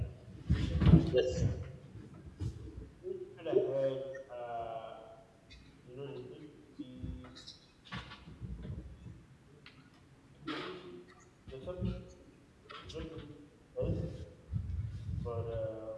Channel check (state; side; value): identical; both; correlation 1.00